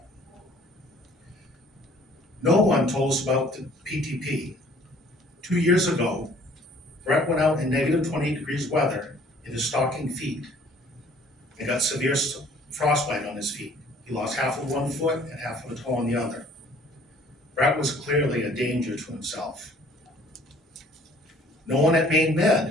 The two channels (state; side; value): normal; both; correlation 0.56